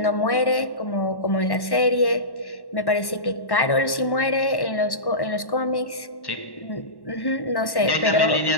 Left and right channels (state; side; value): late; right; 1.1 ms